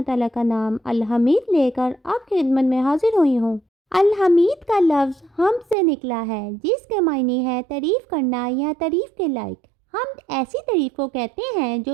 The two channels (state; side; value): drops out; left; at 5.8 s